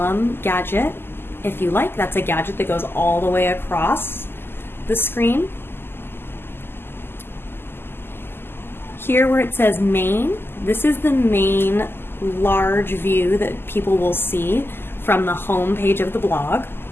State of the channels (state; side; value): late; right; 0.11 ms